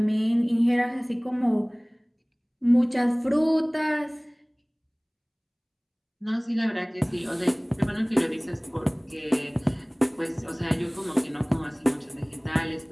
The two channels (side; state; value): both; identical; correlation 1.00